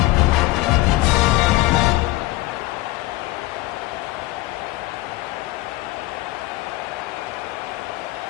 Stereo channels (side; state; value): right; quieter; 18.2 dB